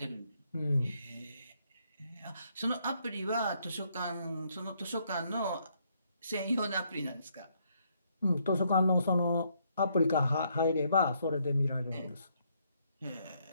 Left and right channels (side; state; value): both; inverted; correlation -0.72